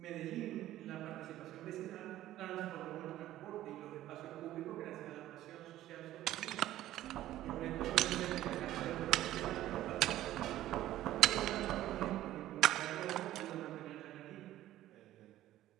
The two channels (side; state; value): left; quieter; 14.1 dB